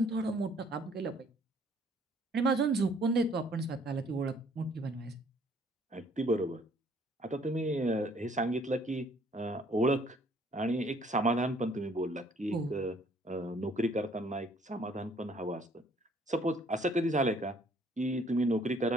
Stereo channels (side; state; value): both; normal; correlation 0.61